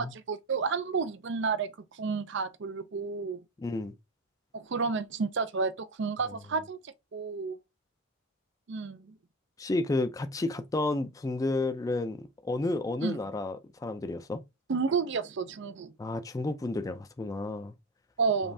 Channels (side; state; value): both; normal; correlation 0.26